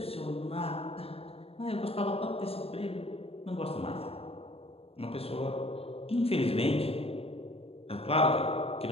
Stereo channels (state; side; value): late; right; 0.28 ms